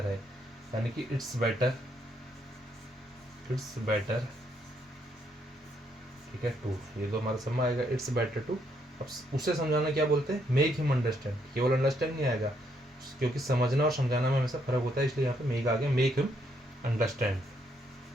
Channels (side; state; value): both; normal; correlation 0.73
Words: है, यानी कि इट्स बेटर, इट्स बेटर, ठीक है, टू। ये तो हमारा समझ आएगा, इट्स बेटर टू। अब उसे समझाना क्या बोलते हैं, मेक हिम अंडरस्टैंड। केवल अंडरस्टैंड नहीं आएगा, क्योंकि समझना और समझाना में हमेशा फर्क होता है, इसलिए यहाँ पे मेक आ गया, make him understand,